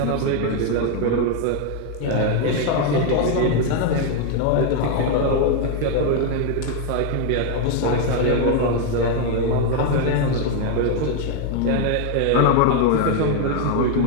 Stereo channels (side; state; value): both; different; correlation 0.01